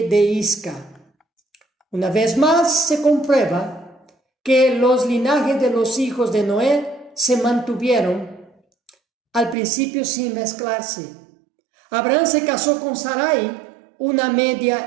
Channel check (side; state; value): left; drops out; at 9.6 s